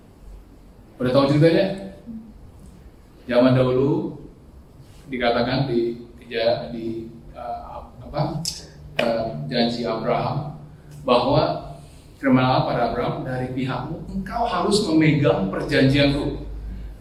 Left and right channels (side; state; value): both; identical; correlation 1.00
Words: Udah tahu ceritanya? Zaman dahulu dikatakan di janji Abraham bahwa firman Allah pada Abraham, dari pihakmu engkau harus memegang perjanjianku.